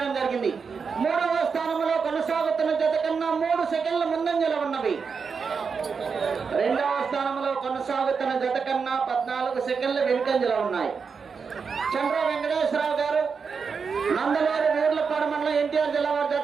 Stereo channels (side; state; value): left; quieter; 5.6 dB